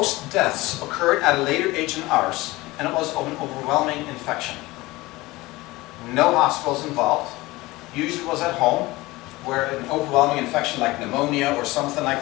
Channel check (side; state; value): right; quieter; 20.3 dB